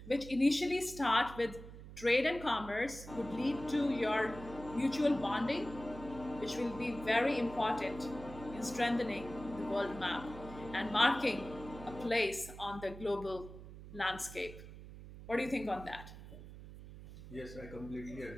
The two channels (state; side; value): noise; right; hum, 14 dB below the sound